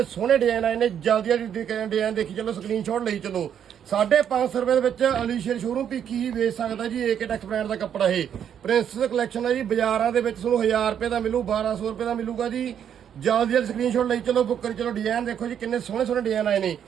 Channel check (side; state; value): left; quieter; 8.9 dB